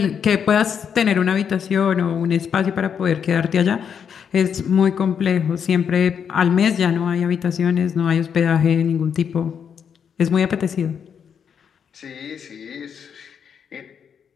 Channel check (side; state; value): right; quieter; 7.5 dB